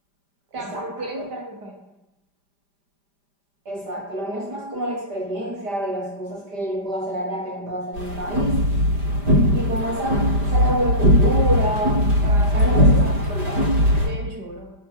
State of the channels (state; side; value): late; left; 5.0 ms